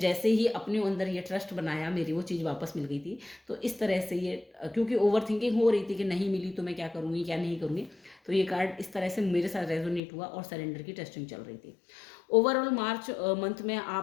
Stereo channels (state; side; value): drops out; right; at 10.0 s